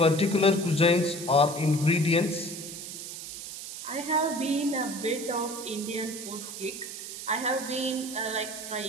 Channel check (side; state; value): right; noise; hiss, 9 dB below the sound